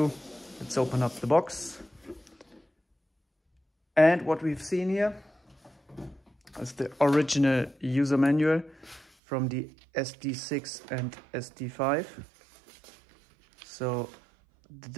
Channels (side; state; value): left; drops out; at 9.1 s